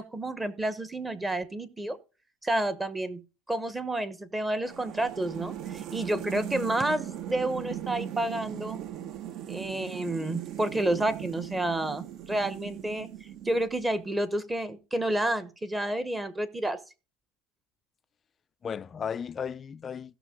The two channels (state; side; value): normal; both; correlation 0.84